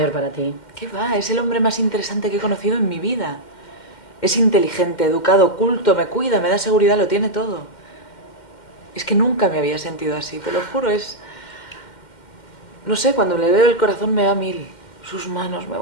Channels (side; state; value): right; late; 2.1 ms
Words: para ti? ¿Qué va? Es el hombre más interesante que he conocido en mi vida. Es inteligente, educado, culto, me cuida, me da seguridad, lo tiene todo. Es que nunca me había sentido así, te lo juro, no sé, cuando le veo el corazón me va a mil. Sus manos me